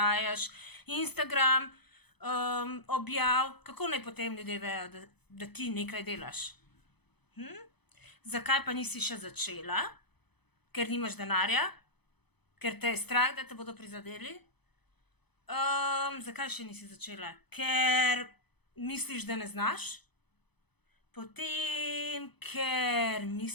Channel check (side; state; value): right; late; 0.98 ms